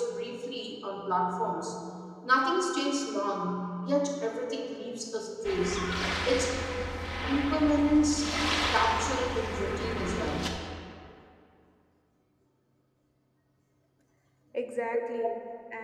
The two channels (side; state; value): both; identical; correlation 1.00